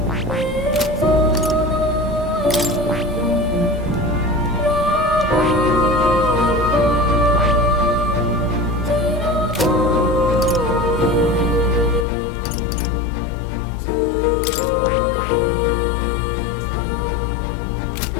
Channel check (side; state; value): right; drops out; at 12.1 s